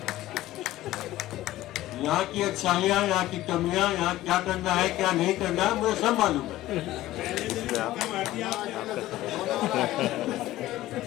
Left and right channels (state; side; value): quieter; right; 15.4 dB